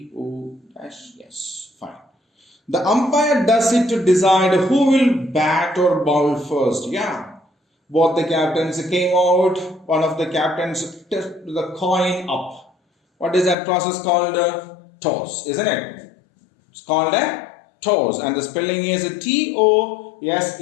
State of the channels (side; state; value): right; drops out; at 13.6 s